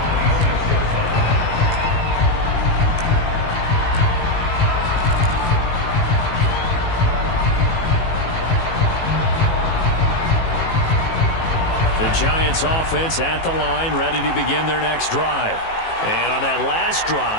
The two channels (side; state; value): right; late; 18 ms